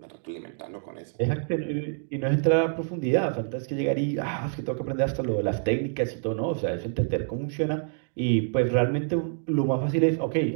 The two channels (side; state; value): left; silent; digital silence